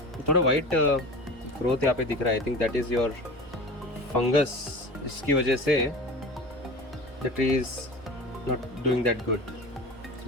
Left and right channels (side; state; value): both; normal; correlation 0.34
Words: थोड़ा वाइट ग्रोथ यहाँ पे दिख रहा है। I think that is your fungus. इसकी वजह से the tree is not doing that good,